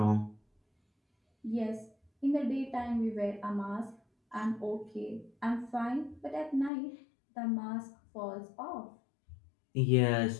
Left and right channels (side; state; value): right; drops out; at 6.7 s